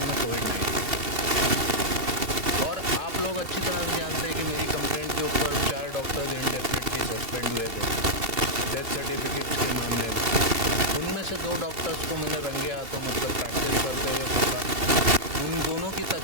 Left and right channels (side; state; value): left; late; 2.7 ms